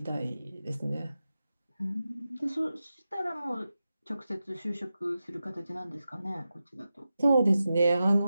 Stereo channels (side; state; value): both; inverted; correlation -0.92